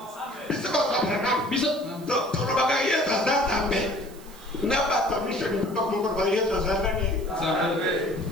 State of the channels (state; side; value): noise; right; hiss, 22 dB below the sound